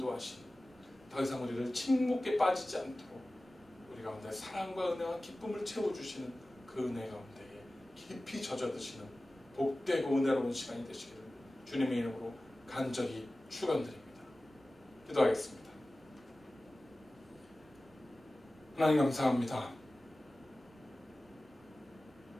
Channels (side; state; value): both; normal; correlation 0.97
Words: 더 이상 우리를 침묵에 빠지지 않도록 우리 가운데 사랑과 은혜와 기쁨을 채워주시는 그 은혜 가운데에 깊이 젖어드시는 복되고 은혜로운 시간이 되시기를 주님의 이름으로 간절히 축원드립니다. 기도하겠습니다. 하나님 감사합니다.